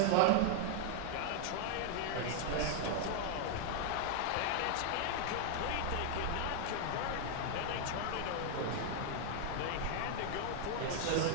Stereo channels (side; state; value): both; different; correlation 0.00